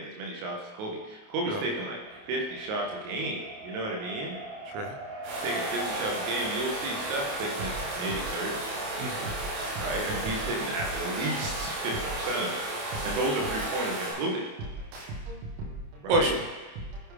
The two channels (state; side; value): late; left; 28 ms